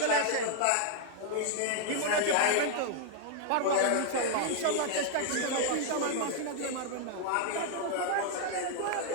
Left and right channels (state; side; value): different; both; correlation -0.01